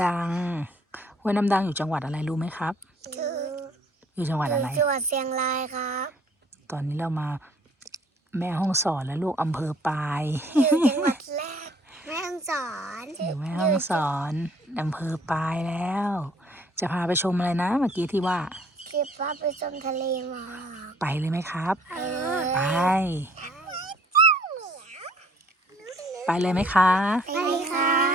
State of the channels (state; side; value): normal; both; correlation 0.59